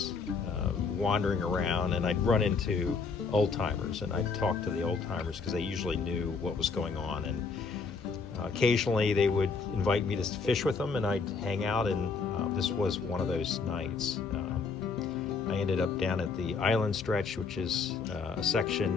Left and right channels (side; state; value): right; quieter; 4.9 dB